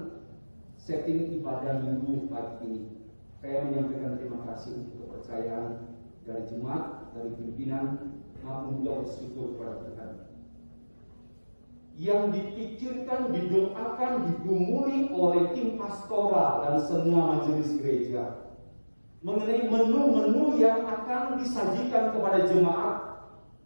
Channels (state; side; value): inverted; both; correlation -1.00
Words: setting ibadah minggu pagi ini. Saya menyampaikan terima kasih untuk kepercayaan dari jemaat, dari pimpinan, maupun juga bersyukur kepada Tuhan. Yang dipikirkan, didoakan, digumuli oleh tim pastoral dan semua majelis gereja mengenai menu-menu yang akan disajikan kepada jemaat,